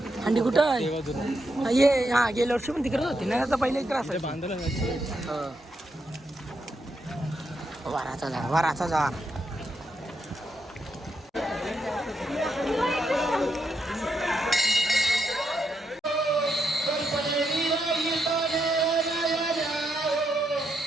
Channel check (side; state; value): both; normal; correlation 0.81